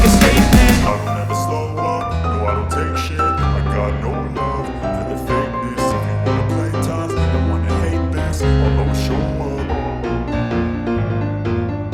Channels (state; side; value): identical; both; correlation 1.00